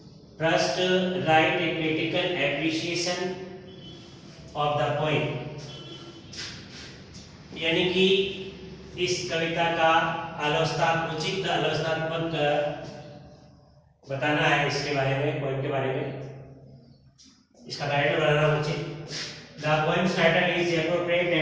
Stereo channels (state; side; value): identical; both; correlation 1.00